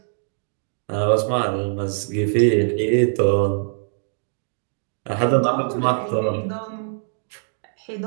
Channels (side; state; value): left; silent; digital silence